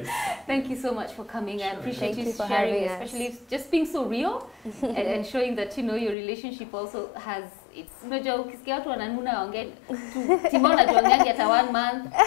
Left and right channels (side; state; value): right; drops out; at 6.2 s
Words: Thank you so much for coming. Sure. I appreciate Thank you you for sharing, having us. especially just being so real and showing that your relationship also has its ukisikia watu wananuna waongea Timona tuongeangi hata 1 month